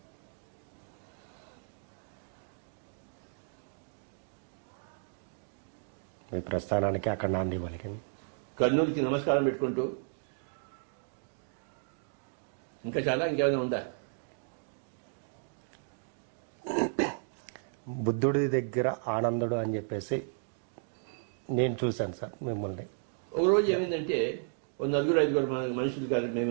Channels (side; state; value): left; silent; digital silence